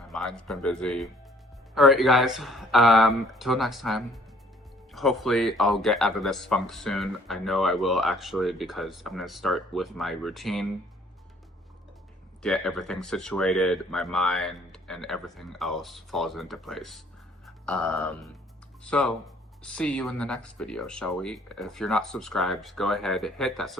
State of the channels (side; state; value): both; normal; correlation 0.59